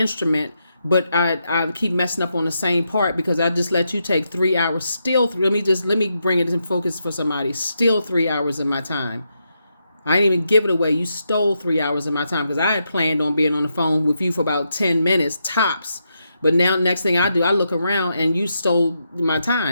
but I keep messing up on the same part because I just let you take 3 hours. Let me bring it in focus for somebody. Still 3 hours of my time. I didn't even give it away. You stole 3 hours of my time because I had planned on being on the phone with you for about 10 minutes tops. But now next thing I do, I look around and you stole my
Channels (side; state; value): both; inverted; correlation -0.83